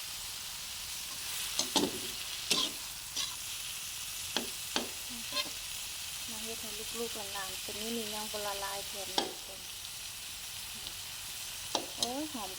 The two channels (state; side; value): identical; both; correlation 1.00